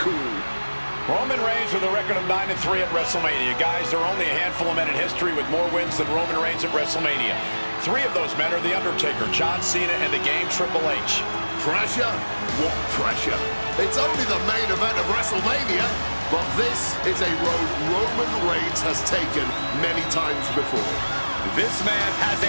Roman Reigns with a record of 9-3 at WrestleMania. Guys, there are only a handful of men in history with more wins than Roman Reigns at WrestleMania. 3 of those men are The Undertaker, John Cena, and the Game Triple H. Pressure? What pressure? It's only the main event of WrestleMania, but this is a road Roman Reigns has taken many times before. This man has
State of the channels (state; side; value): inverted; both; correlation -1.00